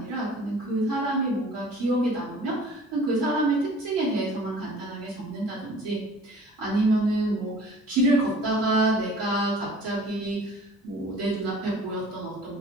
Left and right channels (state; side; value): normal; both; correlation 0.48